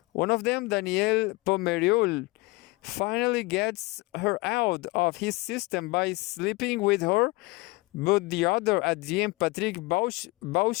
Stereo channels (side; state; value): right; quieter; 23.7 dB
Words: One of them, Danielle Pomerol, finally gets her out of his system by sleeping with her, but the other, Adrien Patrick